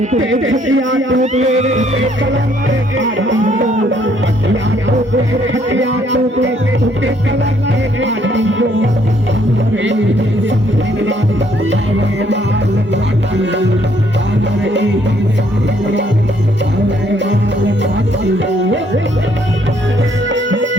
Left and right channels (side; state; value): both; normal; correlation 0.67